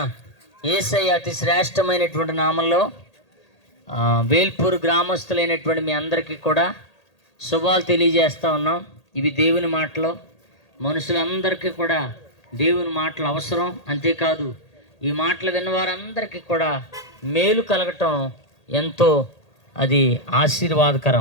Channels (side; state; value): right; late; 1.8 ms